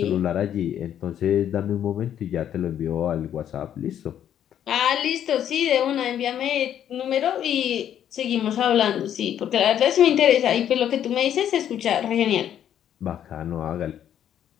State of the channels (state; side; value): quieter; right; 10.1 dB